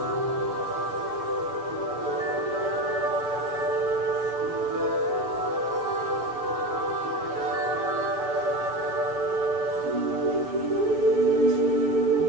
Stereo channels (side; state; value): left; late; 6.9 ms